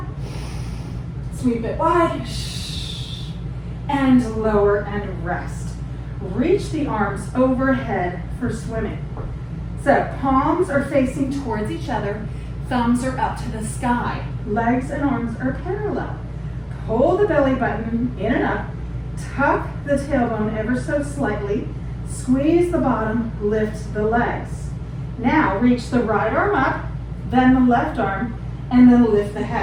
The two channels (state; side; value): identical; both; correlation 1.00